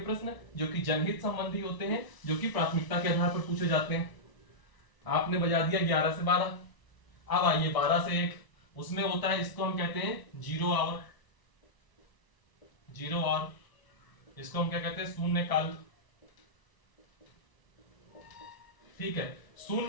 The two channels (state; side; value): late; right; 1.0 ms